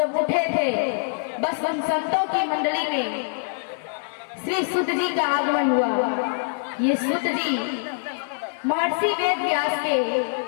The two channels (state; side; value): silent; right; digital silence